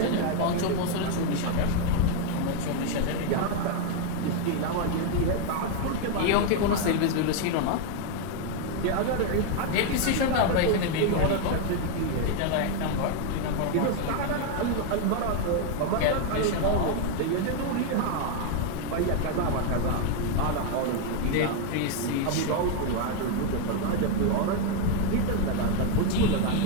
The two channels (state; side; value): different; both; correlation 0.01